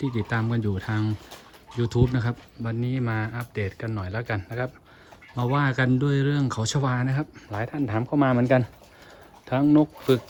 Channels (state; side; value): identical; both; correlation 1.00